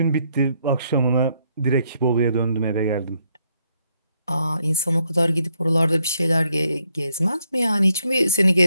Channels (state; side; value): inverted; both; correlation -0.75